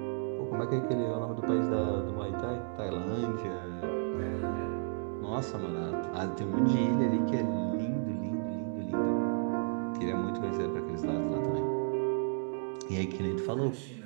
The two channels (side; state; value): left; silent; digital silence